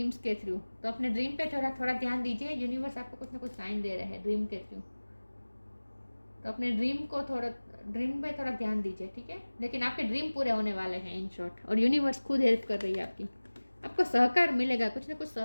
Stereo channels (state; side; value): inverted; both; correlation -1.00